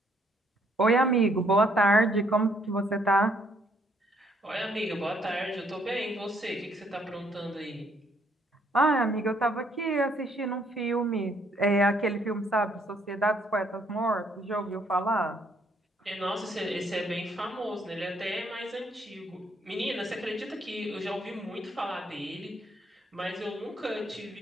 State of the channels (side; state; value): both; normal; correlation 0.68